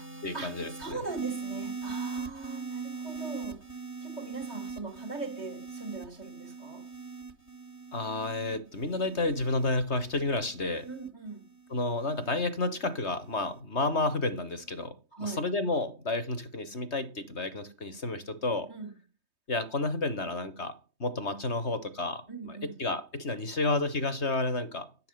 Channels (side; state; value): right; late; 3.2 ms